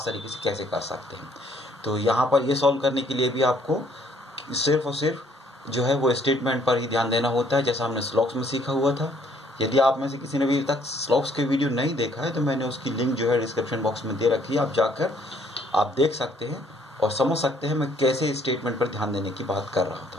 तरीके से कैसे कर सकते हैं। तो यहाँ पर ये सॉल्व करने के लिए भी आपको सिर्फ और सिर्फ जो है वो स्टेटमेंट पर ही ध्यान देना होता है, जैसा हमने स्लॉक्स में सीखा हुआ था। यदि आप में से किसी ने अभी तक स्लॉक्स के वीडियो नहीं देखा है तो मैंने उसकी लिंक जो है डिस्क्रिप्शन बॉक्स में दे रखी है, आप जाकर आप देख सकते हैं और समझ सकते हैं मैं कैसे स्टेटमेंट पर ध्यान देने की बात कर रहा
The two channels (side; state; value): both; normal; correlation 0.64